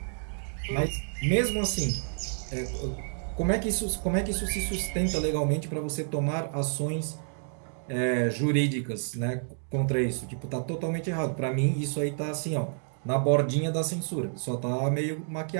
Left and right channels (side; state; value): left; silent; 58 dB below the other